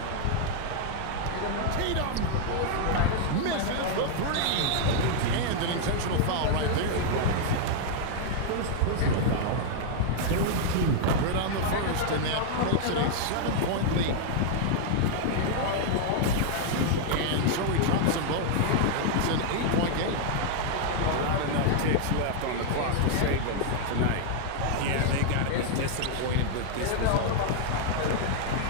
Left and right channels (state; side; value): different; both; correlation -0.01